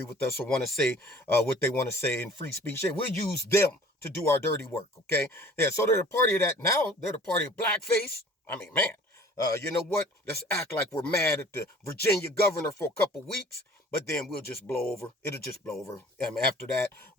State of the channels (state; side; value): normal; both; correlation 0.49